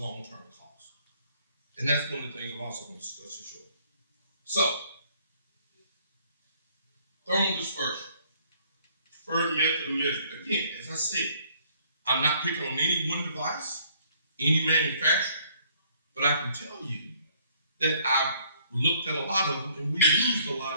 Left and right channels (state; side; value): inverted; both; correlation -0.63